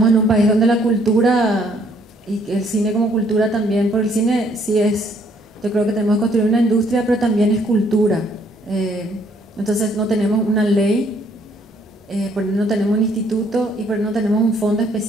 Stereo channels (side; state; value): both; normal; correlation 0.65